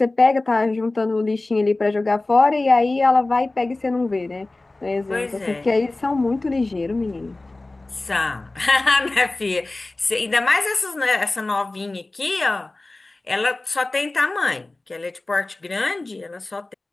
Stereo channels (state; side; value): quieter; right; 3.0 dB